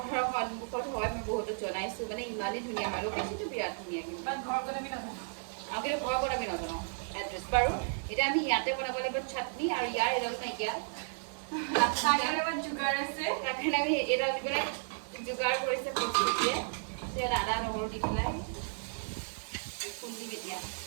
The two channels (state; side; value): silent; left; 55 dB below the other